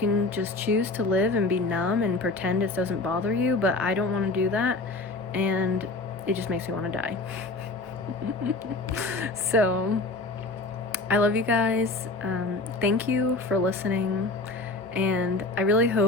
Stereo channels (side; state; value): right; quieter; 3.3 dB